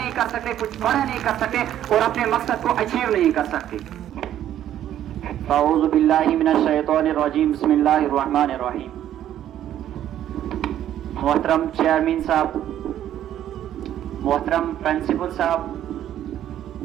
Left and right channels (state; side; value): quieter; left; 11.4 dB